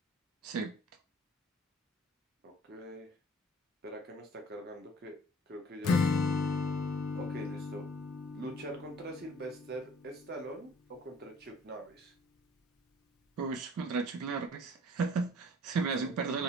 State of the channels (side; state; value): both; normal; correlation 0.52